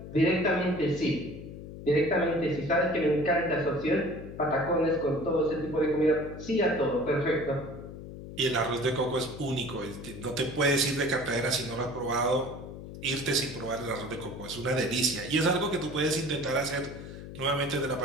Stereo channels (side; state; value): left; noise; hum, 12 dB below the sound